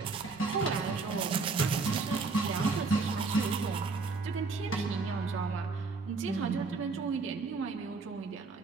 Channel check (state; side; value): quieter; left; 4.1 dB